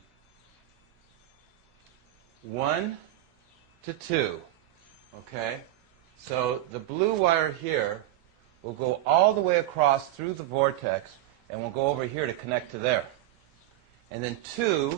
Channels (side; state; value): left; quieter; 14.4 dB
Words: 1 to 2. Okay? So the blue wire here will go all the way across through the vortex and will go over here to connect to there. And then